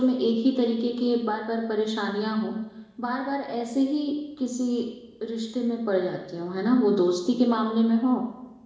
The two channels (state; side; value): identical; both; correlation 1.00